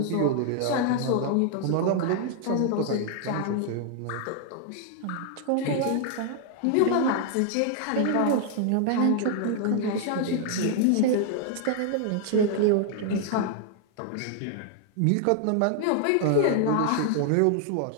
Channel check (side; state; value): both; different; correlation 0.00